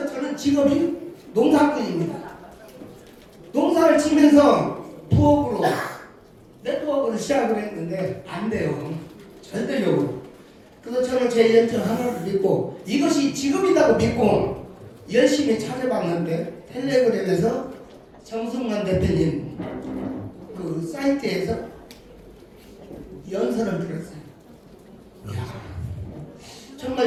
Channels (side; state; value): both; identical; correlation 1.00